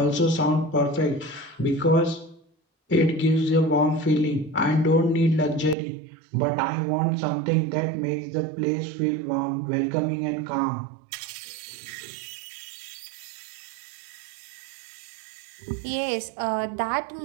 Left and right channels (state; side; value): drops out; left; at 5.8 s